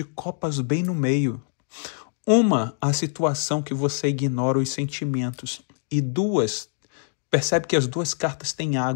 copas bem no meio? Uma, a situação que você ignora os sentimentos. E duas, percebe que as duas cartas têm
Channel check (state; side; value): silent; right; digital silence